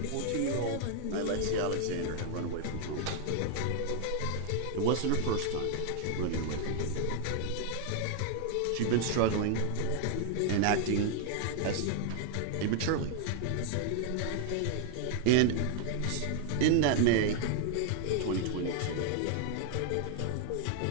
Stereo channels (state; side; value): different; both; correlation 0.00